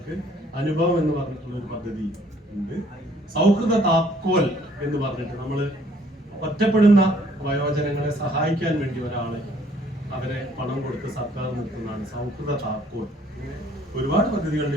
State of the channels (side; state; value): both; normal; correlation 0.61